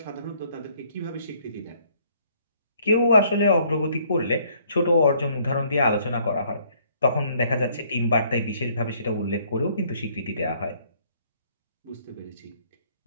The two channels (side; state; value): both; inverted; correlation -0.64